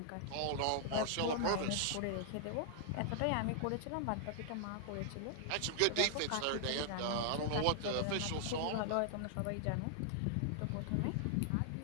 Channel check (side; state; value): both; different; correlation -0.01